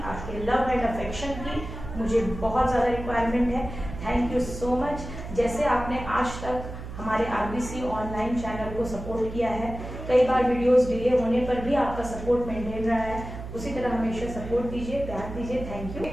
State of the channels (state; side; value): noise; right; hum, 10 dB below the sound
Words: आपके लव एंड अफेक्शन की मुझे बहुत ज़्यादा रिक्वायरमेंट है। Thank you so much. जैसे आपने आज तक हमारे RBC ऑनलाइन चैनल को सपोर्ट किया है, कई बार वीडियोस डिले होने पर भी आपका सपोर्ट मेंटेन रहा है, उसी तरह हमेशा सपोर्ट दीजिए, प्यार दीजिए। Thank you.